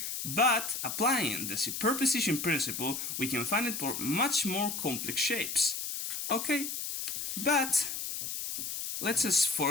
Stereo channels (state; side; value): noise; left; hiss, 4 dB below the sound